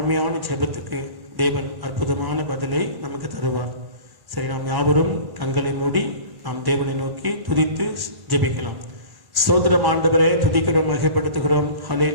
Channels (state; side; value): late; left; 1.1 ms